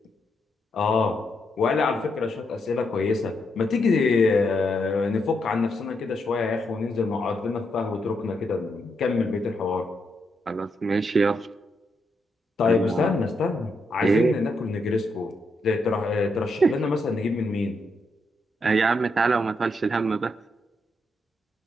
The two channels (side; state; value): both; normal; correlation 0.80